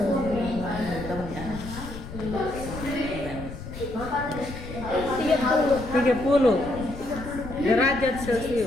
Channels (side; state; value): left; noise; rumble, 11 dB below the sound